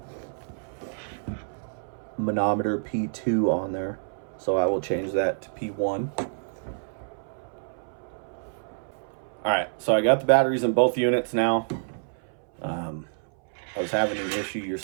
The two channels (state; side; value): silent; left; 59 dB below the other